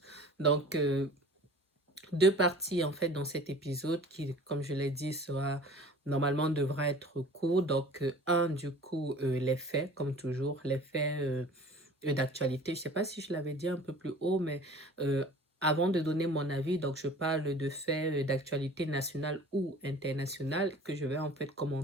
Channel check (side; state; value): both; normal; correlation 0.45